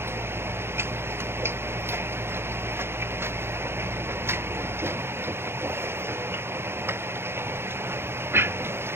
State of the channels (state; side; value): late; left; 0.12 ms